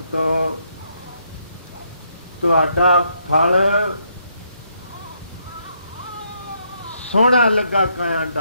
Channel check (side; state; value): both; inverted; correlation -0.75